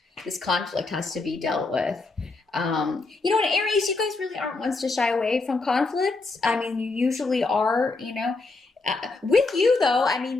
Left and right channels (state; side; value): quieter; right; 3.6 dB